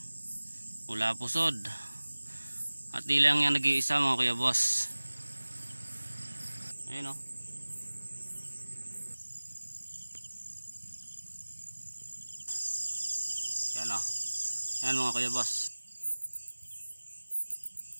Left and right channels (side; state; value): both; inverted; correlation -1.00